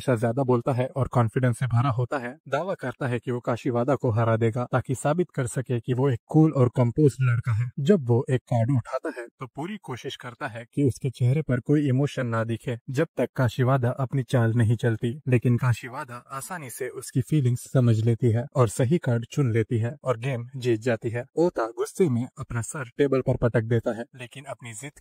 ज्यादा बोलता है और कॉन्फिडेंस से भरा होता है, दावा करता है कि वो काशीवादा को हरा देगा ताकि साबित कर सके कि वो एक कूल और कंपोज्ड लड़का है। जब वो एक कार्ड उठाता है तो पूरी कोशिश करता है कि उसके चेहरे पर कोई इमोशन ना दिखे जब तक काशीवादा अपनी चाल नहीं चलती। लेकिन काशीवादा आसानी से उसकी फीलिंग्स समझ लेती है और सही कार्ड चुन लेती है और गेम जीत जाती है। ओता गुस्से में अपना सर टेबल पर पटक देता है, लेकिन अपनी जिद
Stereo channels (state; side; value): identical; both; correlation 1.00